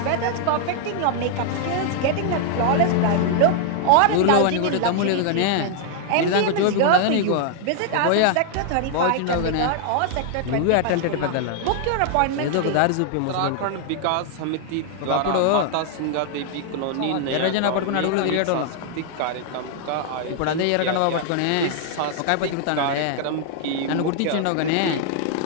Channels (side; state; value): both; different; correlation 0.00